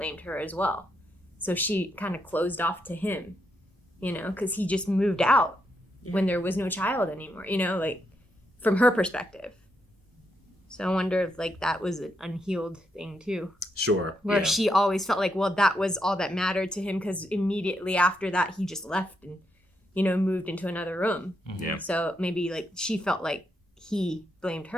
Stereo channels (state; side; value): normal; both; correlation 0.80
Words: her as well. So she kind of closed off to him, you know, because he just moved out when there was no child anymore, you know, like, from her perspective. So I wonder if, like, that was an unhealed thing, too. Sure. Where she always felt like, well, that was all that mattered to him, because immediately after that, he just left and, you know, moved into another room. Yeah. So maybe, like, she felt like he blamed